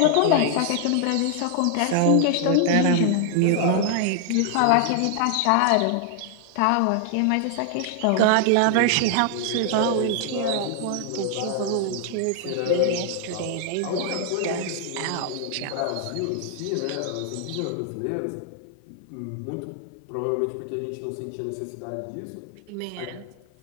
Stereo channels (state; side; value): different; both; correlation 0.00